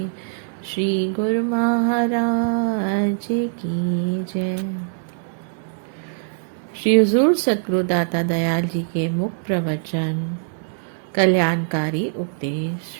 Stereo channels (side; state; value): left; silent; digital silence